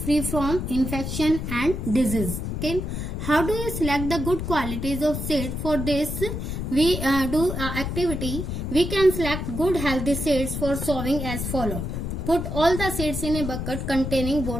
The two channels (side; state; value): left; noise; rumble, 4 dB below the sound